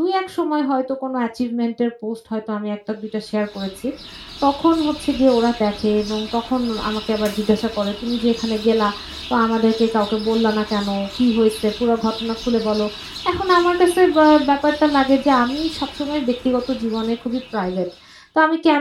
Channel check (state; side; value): identical; both; correlation 1.00